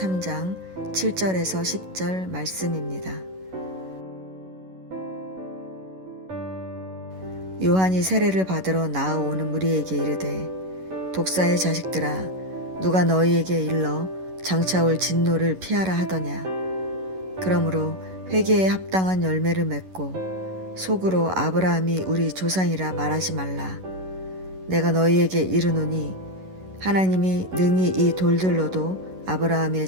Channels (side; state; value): left; late; 11 ms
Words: 7절에서 10절 말씀입니다. 요한이 세례를 받으러 나아오는 무리에게 이르되 독사의 자식들아 누가 너희에게 일러 장차 올 진노를 피하라 하더냐. 그러므로 회개에 합당한 열매를 맺고 속으로 아브라함이 우리 조상이라 말하지 말라. 내가 너희에게 이르노니 하나님이 능히 이 돌들로도